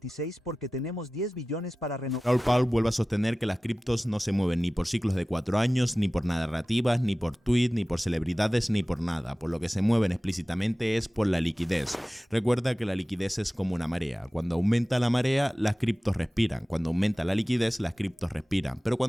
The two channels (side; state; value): both; normal; correlation 0.97